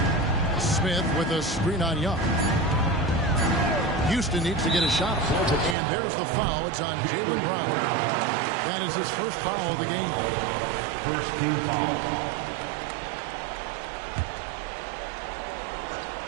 Smith with a screen on Young. Houston needs to get a shot. And there's the foul. It's on Jaylen Brown. That is his first foul of the game. First team foul.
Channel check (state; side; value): drops out; left; at 5.8 s